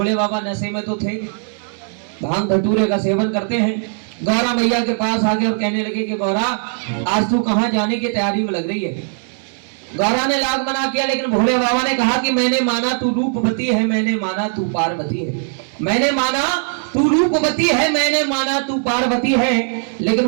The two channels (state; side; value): silent; left; 58 dB below the other